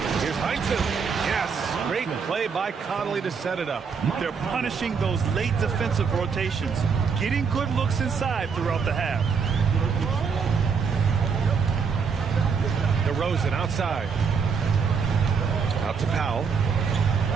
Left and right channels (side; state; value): left; quieter; 5.8 dB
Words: Here's Heinsohn. Yes, great play by Conley to set it up. They're punishing those late defensive rotations, getting good looks inside throughout the half. DeRozan outside. Out to Powell.